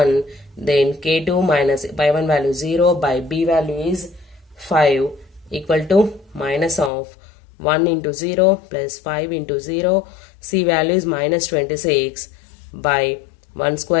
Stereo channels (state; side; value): drops out; right; at 6.9 s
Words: Then k2 minus by 1 value 0 by b value is 5 equal to minus of 1 into 0 plus 5 into 0. C value is minus 26 by 1